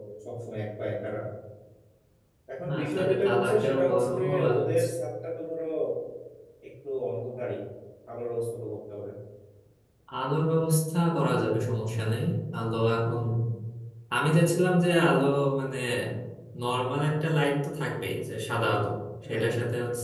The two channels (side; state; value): both; identical; correlation 1.00